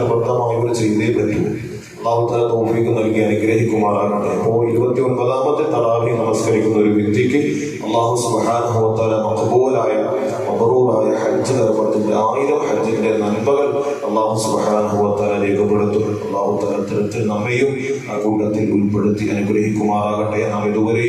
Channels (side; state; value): both; identical; correlation 1.00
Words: ചെയ്തേ പറ്റൂ. അല്ലാഹു തആല തൗഫീഖ് നൽകി അനുഗ്രഹിക്കുമാറാകട്ടെ. അപ്പോൾ 29ാമത്തെ തറാവീഹ് നമസ്കരിക്കുന്ന ഒരു വ്യക്തിക്ക് അല്ലാഹു സുബ്ഹാനഹു വ തആല മഖ്ബൂലായ മബ്റൂറായ ഹജ്ജ് നിർബന്ധത്തിന്റെ 1000 ഹജ്ജിന്റെ നന്മകൾ അല്ലാഹു സുബ്ഹാനഹു വ തആല രേഖപ്പെടുത്തും. അല്ലാഹു തആല തരത്തിൽ നമ്മയും ആ കൂട്ടത്തിൽ ഉൾപ്പെടുത്തി അനുഗ്രഹിക്കുമാറാകട്ടെ. നാം